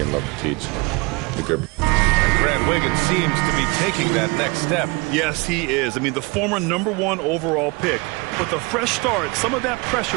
love to teach. And Grant Wiggins seems to be taking that next step. Yes, he is. I mean, the former #1 overall pick. With a fresh start, some of that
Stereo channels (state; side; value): quieter; left; 26.9 dB